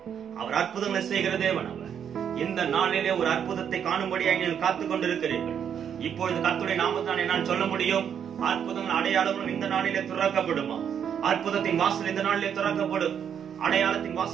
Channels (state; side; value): quieter; left; 8.3 dB